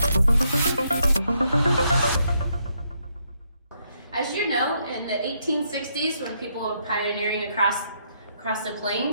As you know, in the 1860s, when people were pioneering across the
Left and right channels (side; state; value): both; inverted; correlation -0.76